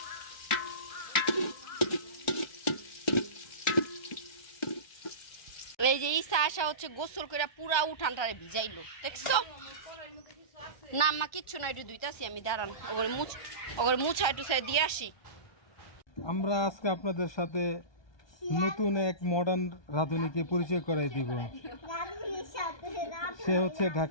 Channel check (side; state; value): right; late; 1.3 ms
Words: এই যে ইসা আসা হচ্ছে গোসল করে পুরা উঠানটারে ভিজাইলো, দেখছো? না মা কিচ্ছু না, একটু দুইটাছি আমি, দাঁড়ান ওগরে মুছা একটু সাইড দিয়ে আসি। আমরা আজকে আপনাদের সাথে নতুন এক মডার্ন রাঁধুনিকে পরিচয় করাই দিব। সে হচ্ছে